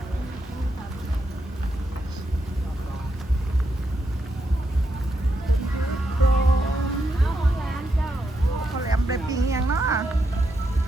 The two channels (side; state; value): both; normal; correlation 0.82